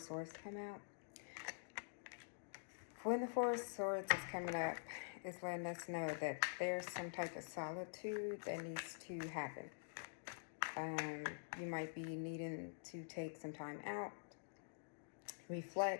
Swords come out. When the Four of Swords is coming up, it's letting us know that there's some type of solitude that needs to happen. You might be needing to take some time out,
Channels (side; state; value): right; silent; digital silence